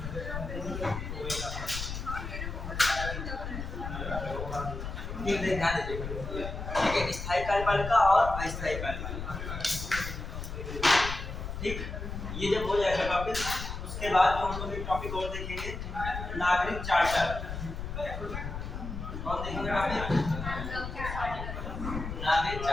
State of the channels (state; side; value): noise; left; rumble, 6 dB below the sound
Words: ध्यान दीजिए, ठीक है, स्थायी कार्यपालिका और अस्थायी कार्यपालिका। ठीक, ये जब हो जाएगा टॉपिक, उसके बाद जो हम लोग एक टॉपिक और देखेंगे, नागरिक चार्टर। कौन देखेंगे टॉपिक? नागरिक